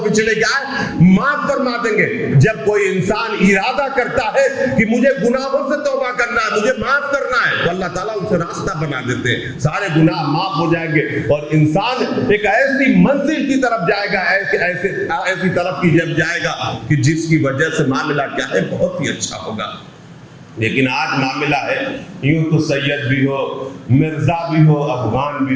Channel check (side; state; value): both; identical; correlation 1.00